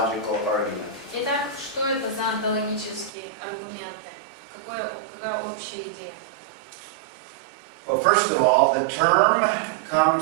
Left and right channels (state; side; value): drops out; left; at 3.1 s